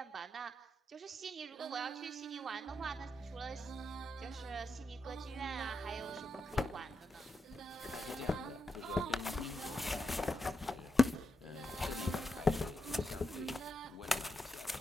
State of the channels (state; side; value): normal; both; correlation 0.85